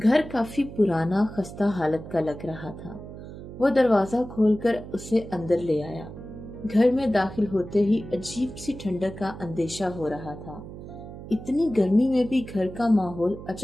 काफी पुराना खस्ता हालत का लग रहा था। वो दरवाजा खोलकर उसे अंदर ले आया। घर में दाखिल होते ही अजीब सी ठंडक का अंदेशा हो रहा था। इतनी गर्मी में भी घर का माहौल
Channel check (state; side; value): noise; right; hum, 13 dB below the sound